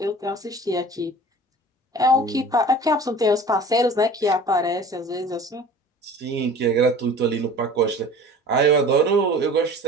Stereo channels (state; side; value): normal; both; correlation 0.42